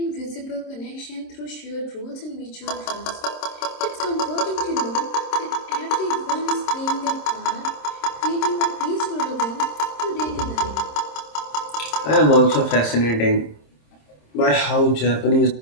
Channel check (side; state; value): right; late; 26 ms